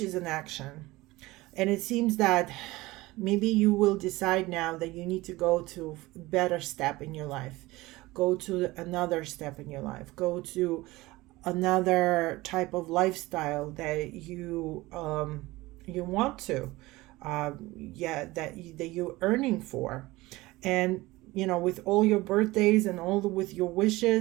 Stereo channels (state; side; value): quieter; left; 19.9 dB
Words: an action. And it seems that maybe you will decide now that you need to go to a better step in your life. Go to another step in your life. Go to another type of lifestyle that you want to, that you're earning for. And with all your birthdays and with your